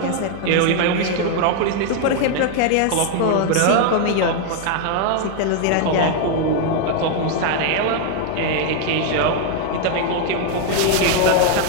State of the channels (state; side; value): different; both; correlation 0.00